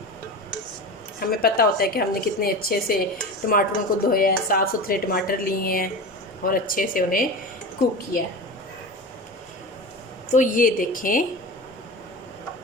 हमें पता होता है कि हमने कितने अच्छे से टमाटरों को धोया है, साफ़ सुथरे टमाटर लिए हैं और अच्छे से उन्हें कुक किया है। तो ये देखें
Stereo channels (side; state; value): both; normal; correlation 0.28